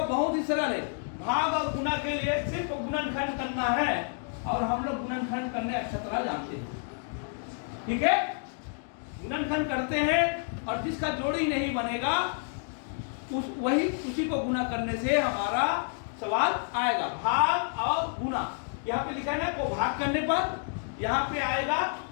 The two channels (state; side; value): silent; right; 58 dB below the other